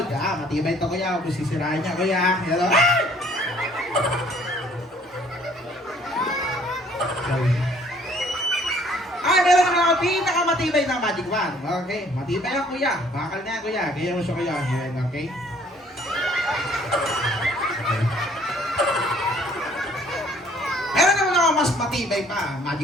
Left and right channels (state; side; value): normal; both; correlation 0.59